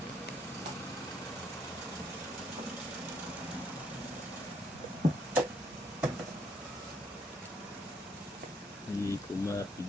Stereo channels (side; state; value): both; normal; correlation 0.70